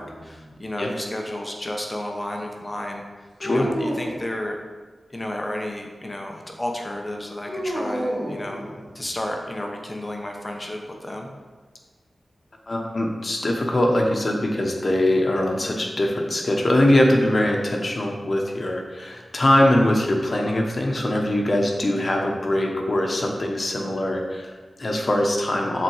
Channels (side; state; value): both; normal; correlation 0.95